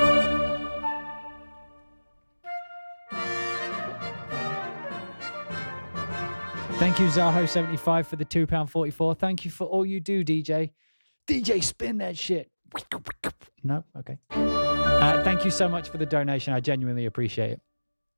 Thank you, Zaho75, for the £2.44. Thank you for all you do, DJ. DJ, spin that shit. No? Okay. Thank you so much for the donation. I genuinely appreciate it.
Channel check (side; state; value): both; inverted; correlation -1.00